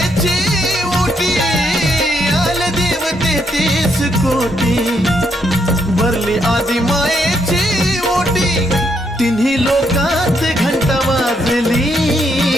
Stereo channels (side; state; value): both; normal; correlation 0.76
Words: ओटी आले देव 33 कोटी भरली आदि मायेची ओटी तिन्ही लोकात घंटा वाजली